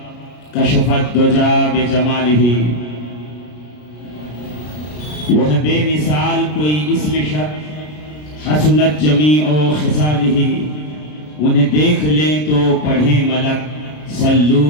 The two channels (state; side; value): late; right; 33 ms